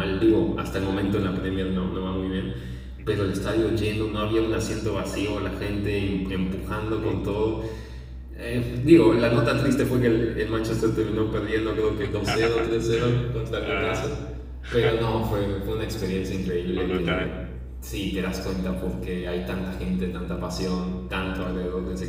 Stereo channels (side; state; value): both; identical; correlation 1.00